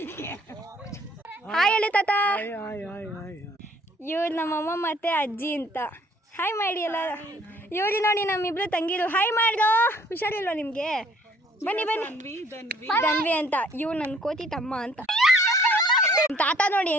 ಹಾಯ್ ಹೇಳಿ ತಾತ. ಇವ್ರು ನಮ್ಮಮ್ಮ ಮತ್ತೆ ಅಜ್ಜಿ ಅಂತ. ಹಾಯ್ ಮಾಡಿ ಎಲ್ಲ. ಇವ್ರು ನೋಡಿ ನಮ್ಮಿಬ್ರು ತಂಗಿರು. ಹಾಯ್ ಮಾಡ್ದೋ, ಹುಷಾರಿಲ್ವ ನಿಮಗೆ? ಬನ್ನಿ ಬನ್ನಿ. ಧನ್ವಿ ಅಂತ. ಇವ್ರು ನನ್ನ ಕೋತಿ ತಮ್ಮ ಅಂತ. ತಾತ ನೋಡಿ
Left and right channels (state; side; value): normal; both; correlation 0.60